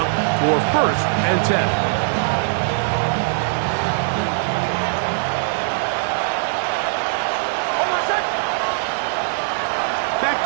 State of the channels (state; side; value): silent; left; digital silence